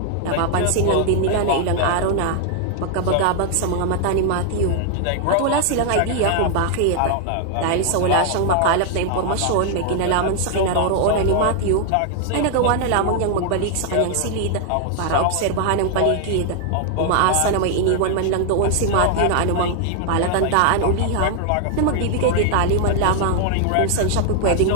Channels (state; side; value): different; both; correlation 0.00